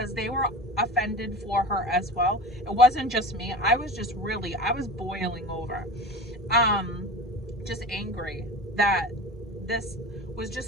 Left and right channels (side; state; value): both; normal; correlation 0.33